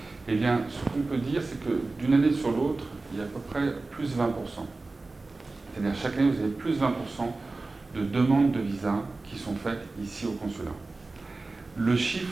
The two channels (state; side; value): quieter; left; 3.4 dB